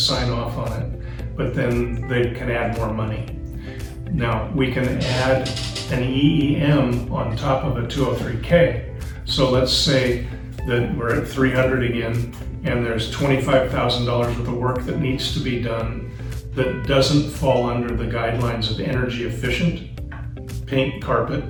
off on it, but then they can add more money. Now, we can add an EEM on top of a 203K. So let's say that we're at 300 again, and there's $25,000 worth of work that needs to be done that doesn't fall under the guidelines of energy efficient, paint, carpet,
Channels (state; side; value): identical; both; correlation 1.00